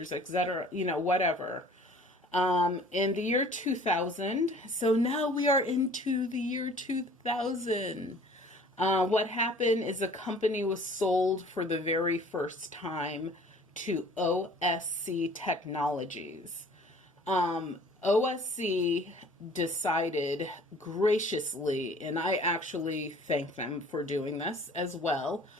etc., whatever. In the year 2000, so now we are into the year 2000. What happened is a company was sold for the very first time to OSC Technologies. OSC decided graciously, and I actually thank them for doing this as well,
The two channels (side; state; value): both; normal; correlation 0.51